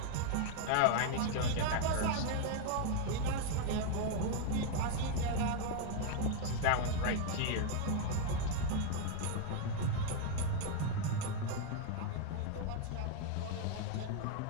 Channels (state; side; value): different; both; correlation 0.00